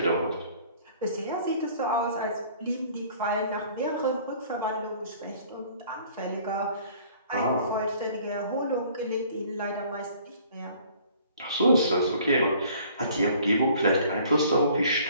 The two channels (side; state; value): both; inverted; correlation -0.54